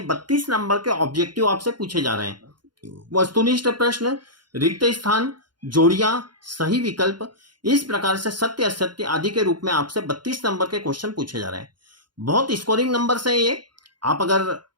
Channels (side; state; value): left; late; 0.71 ms